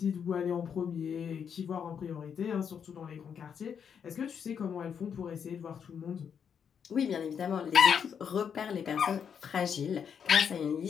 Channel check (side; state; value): right; quieter; 7.4 dB